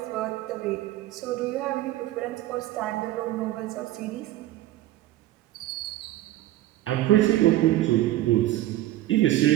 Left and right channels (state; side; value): quieter; left; 15.3 dB